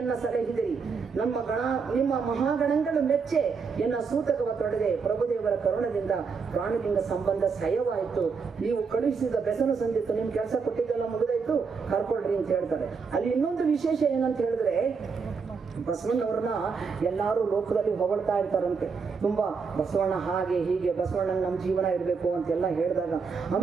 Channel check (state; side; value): quieter; left; 5.3 dB